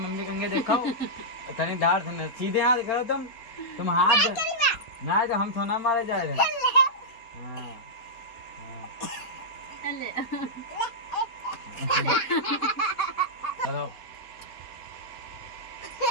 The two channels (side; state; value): right; late; 4.2 ms